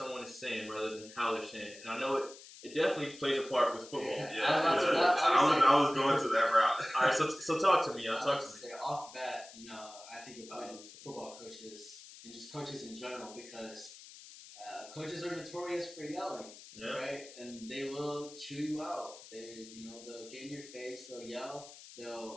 is saying rather than how they're saying it. And I know it definitely plays a part with football. I was going to that route. All right, so talk to me. Talk to me. Say off bat, I think about football coaches and just coaches in general, because coaches are notorious for yelling, right? And they will chew you out. They'll get in your face. They'll yell.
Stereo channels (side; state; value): left; noise; hiss, 17 dB below the sound